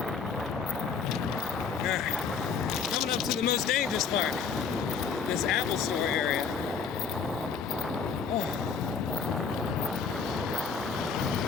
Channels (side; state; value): right; quieter; 5.9 dB